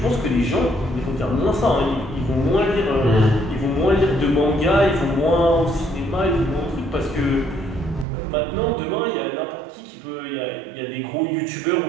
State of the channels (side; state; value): left; drops out; at 8.1 s